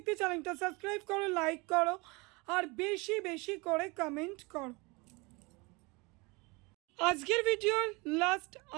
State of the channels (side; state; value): left; quieter; 26.6 dB